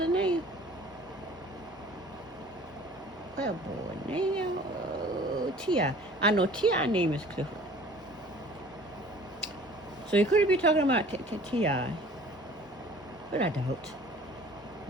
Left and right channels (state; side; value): normal; both; correlation 0.48